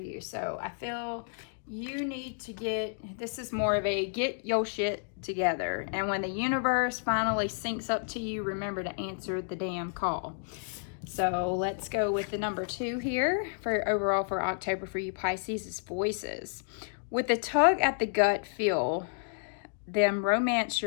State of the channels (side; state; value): right; silent; digital silence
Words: So I feel you need to this is more of a get your shit together. And when the universe finally syncs up to you, remember to answer the damn call. So let's go with the number 2 here for overall for October for you Pisces is voices. With the tug at the gut, feel them romance